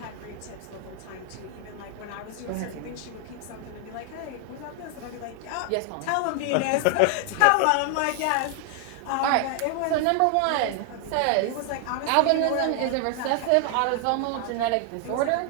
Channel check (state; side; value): different; both; correlation 0.00